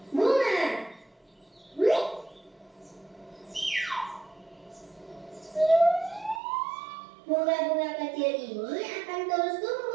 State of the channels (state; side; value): drops out; left; at 6.4 s